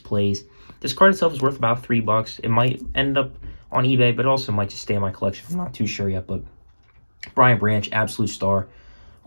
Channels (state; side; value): inverted; both; correlation -1.00